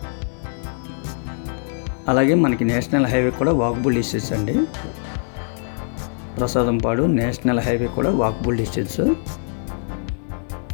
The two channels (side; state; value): right; silent; digital silence